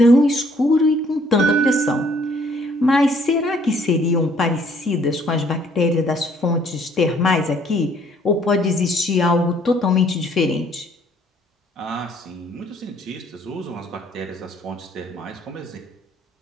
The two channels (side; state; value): both; normal; correlation 0.62